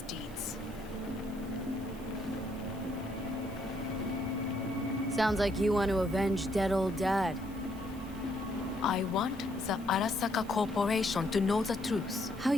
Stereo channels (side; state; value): right; noise; hiss, 22 dB below the sound